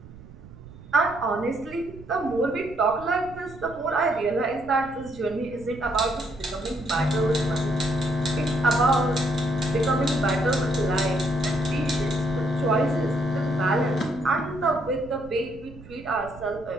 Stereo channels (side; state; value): right; noise; rumble, 18 dB below the sound